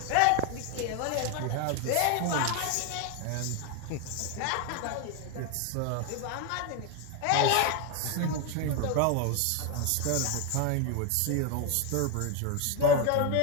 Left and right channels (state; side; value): different; both; correlation 0.01